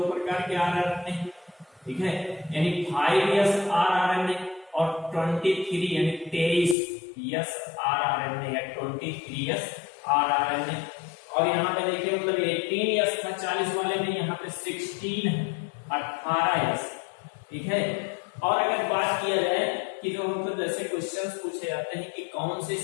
प्रकार के आरएनए। ठीक है, यानी 5s आरएनए और 23 यानी 23s आरएनए या 23s आरएनए। और यहाँ पे देखिए मतलब 18s का 40 वाले में यहाँ पे 16 18s। ठीक है, और अगर बात किया जाए कि जो मतलब जैसे क्वेश्चंस पूछे जाते हैं कि कौन सी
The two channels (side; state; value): right; drops out; at 6.8 s